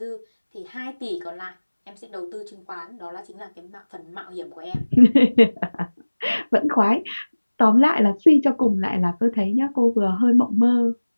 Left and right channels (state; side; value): inverted; both; correlation -1.00